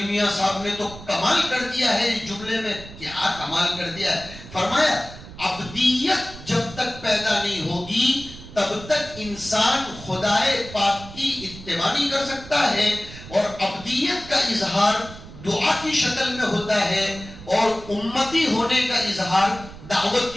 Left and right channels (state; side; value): noise; right; rumble, 15 dB below the sound